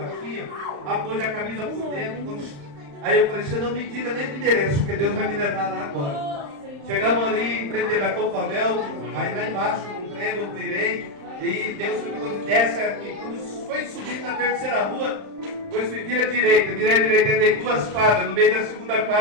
apôs a camisa por dentro. Aí eu falei, você não me diga nem o endereço, porque Deus vai me levar lá agora. Chegamos ali em frente da Copavel, aí lá embaixo, num trem, eu virei, e Deus me desce aqui. Quando foi subir na terceira rua, depois virei à direita, dei 2 quadras, no meio da segunda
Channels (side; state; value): left; late; 35 ms